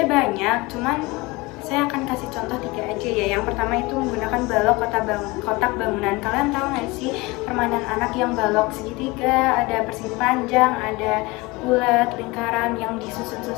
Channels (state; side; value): quieter; right; 23.0 dB